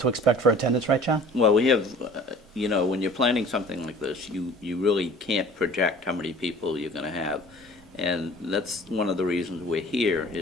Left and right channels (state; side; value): normal; both; correlation 0.47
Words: expect for attendance, right, John? Well, we have, when you're planning something like this, you really can't project how many people you're going to have. And that's one of the reasons we're here,